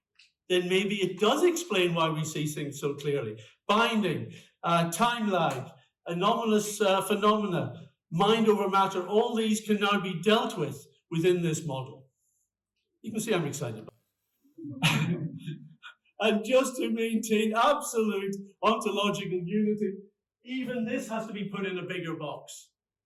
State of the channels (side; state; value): both; identical; correlation 1.00